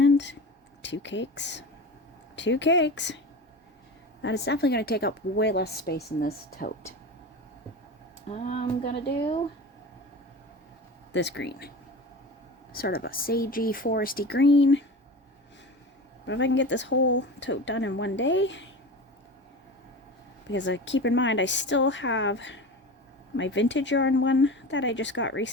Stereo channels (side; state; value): both; normal; correlation 0.30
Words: 2 cakes. 2 cakes. That is definitely going to take up way less space in this tote. I'm going to do this green. Sort of a sagey, foresty green. But if I can get this whole tote done in one day, because keep in mind I still have my vintage yarn one that I just got